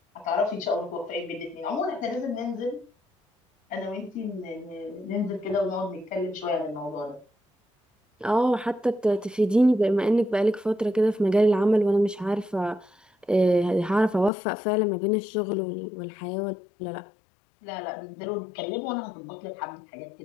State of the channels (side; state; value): right; drops out; at 14.3 s